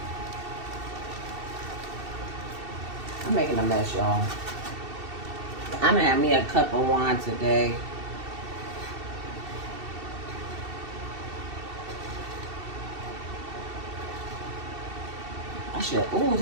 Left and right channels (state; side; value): late; left; 2.7 ms